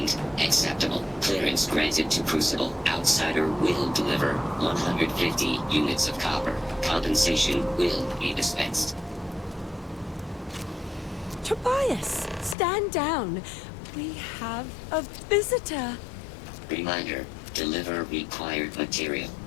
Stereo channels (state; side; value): drops out; right; at 12.6 s